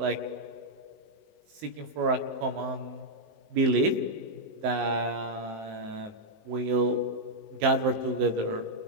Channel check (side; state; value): left; late; 19 ms